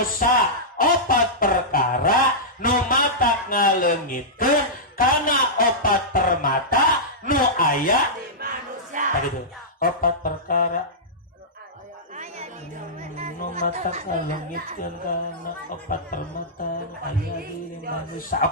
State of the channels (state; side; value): normal; both; correlation -0.13